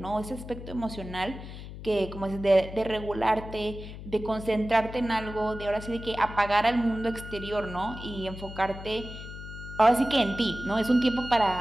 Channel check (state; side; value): noise; left; hum, 12 dB below the sound